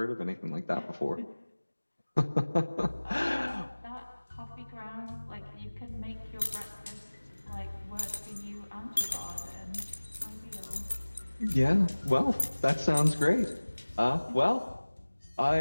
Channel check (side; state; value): both; inverted; correlation -1.00